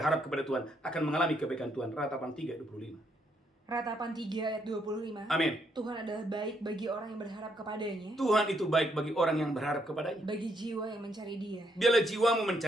kepada Tuhan, akan mengalami kebaikan Tuhan. Ratapan 3:25. Ratapan 3 ayat 25. Amin. Tuhan adalah baik bagi orang yang berharap kepadanya. Tuhan itu baik bagi orang yang berharap kepadanya. Bagi jiwa yang mencari Dia. Biarlah jiwamu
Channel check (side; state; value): both; normal; correlation 0.74